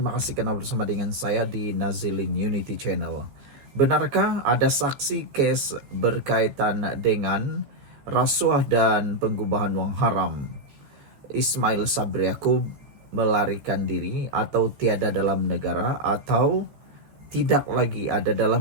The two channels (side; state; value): left; late; 14 ms